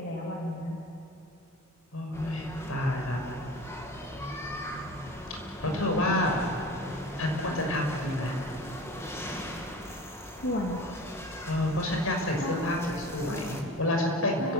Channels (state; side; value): normal; both; correlation 0.38